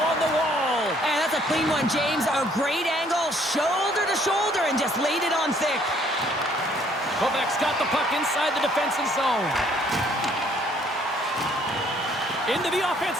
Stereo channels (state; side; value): normal; both; correlation 0.62